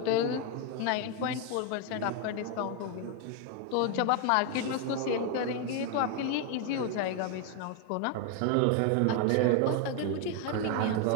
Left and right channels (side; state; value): both; different; correlation 0.01